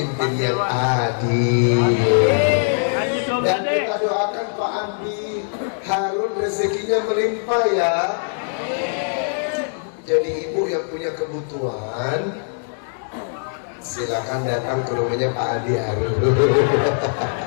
yang adil. Dan kita doakan Pak Andi Harun rezekinya melimpah ya. Jadi ibu yang punya kebutuhan, silakan datang ke rumahnya Pak Andi Harun.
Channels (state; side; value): silent; right; 65 dB below the other